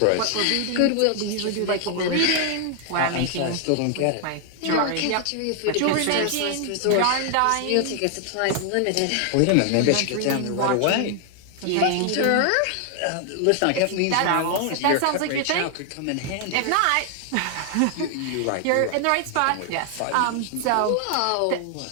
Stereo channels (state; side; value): different; both; correlation 0.00